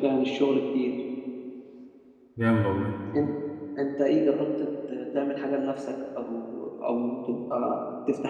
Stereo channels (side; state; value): both; identical; correlation 1.00